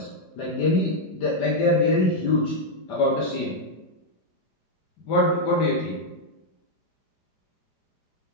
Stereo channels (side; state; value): right; late; 4.9 ms